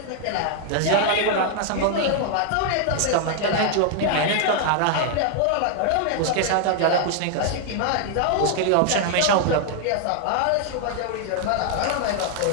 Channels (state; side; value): different; both; correlation 0.00